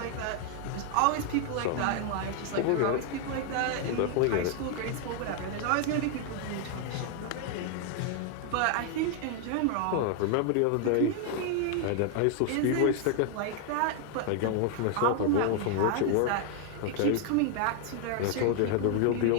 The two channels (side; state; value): both; different; correlation 0.00